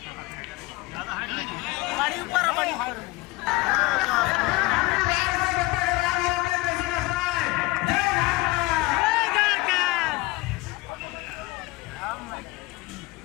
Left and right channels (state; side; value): quieter; right; 21.2 dB